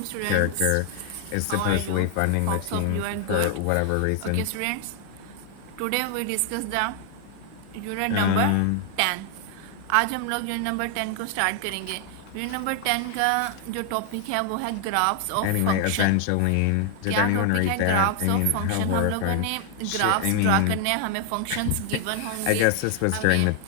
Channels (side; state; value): both; different; correlation 0.00